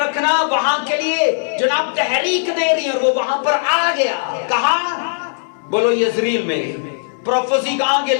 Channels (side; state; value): right; silent; digital silence